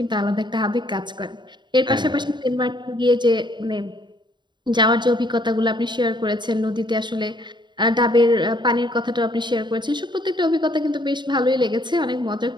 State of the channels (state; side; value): late; left; 0.22 ms